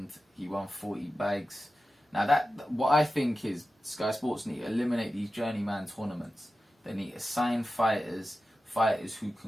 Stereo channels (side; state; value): both; normal; correlation 0.93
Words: He won 40 bags. Now, what I think is Sky Sports need to eliminate these journeyman tournaments. They need to sign fighters who